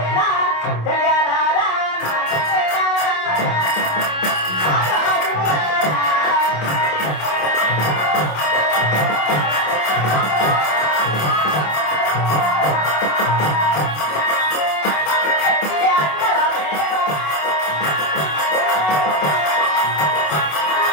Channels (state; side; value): late; right; 27 ms